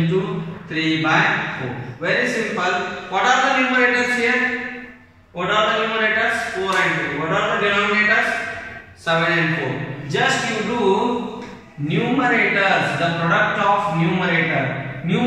3 by 4. Very simple. What are the numerators here? What are the numerators? 4 and 2. What are the denominators? 7 and 4. Just you do numerators, the product of numerator.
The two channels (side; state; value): both; identical; correlation 1.00